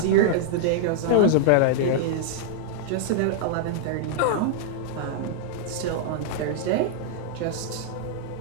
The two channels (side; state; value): both; different; correlation -0.01